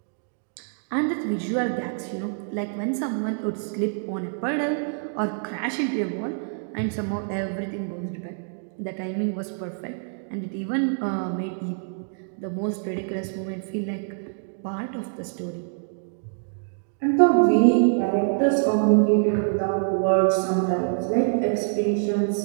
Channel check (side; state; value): left; silent; digital silence